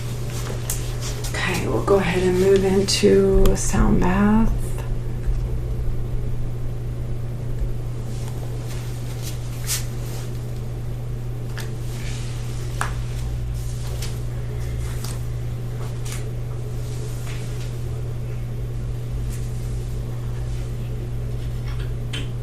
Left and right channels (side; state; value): both; identical; correlation 1.00